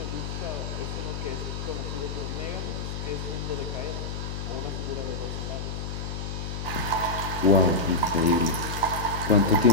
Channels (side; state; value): left; noise; hum, 5 dB below the sound